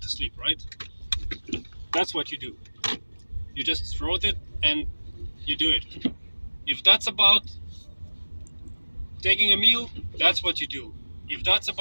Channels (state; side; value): inverted; both; correlation -1.00